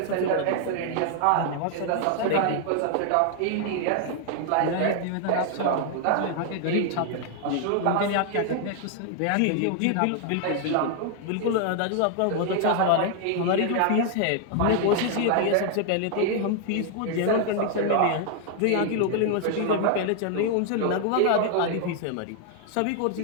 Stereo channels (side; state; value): both; different; correlation 0.00